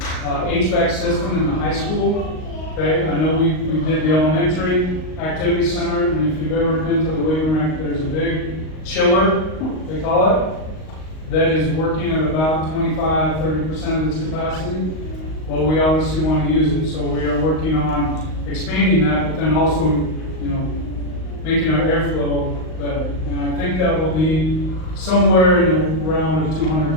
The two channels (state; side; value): late; right; 38 ms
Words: HVAC system in the high school. Okay, I know we did the elementary activity center, and if you've ever been to the Wakefield, there's a big chiller, they call it, that is working at about 25–30% of its capacity. Well, we obviously want to use it, so we are working on expanding that, but then also, making our airflow better. And I think that will be somewhere in around